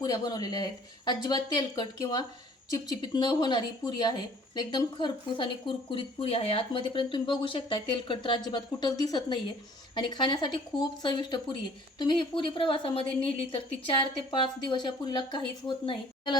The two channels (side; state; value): both; normal; correlation 0.55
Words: बनवलेल्या आहेत. अजिबात तेलकट किंवा चिपचिपीत न होणारी पुरी आहे. एकदम खरपूस आणि कुरकुरीत पुरी आहे. आतमध्येपर्यंत तुम्ही बघू शकता तेलकट तर अजिबात कुठंच दिसत नाही आहे. आणि खाण्यासाठी खूप चविष्ट पुरी आहे. तुम्ही ही पुरी प्रवासामध्ये नेली तर ती 4 ते 5 दिवस या पुरीला काहीच होत नाही.